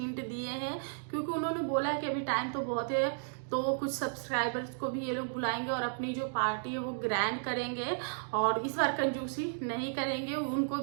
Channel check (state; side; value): silent; left; digital silence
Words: दिए हैं, क्योंकि उन्होंने बोला कि अभी टाइम तो बहुत है, तो कुछ सब्सक्राइबर्स को भी ये लोग बुलाएंगे और अपनी जो पार्टी है वो ग्रैंड करेंगे और इस बार कंजूसी नहीं करेंगे। उनको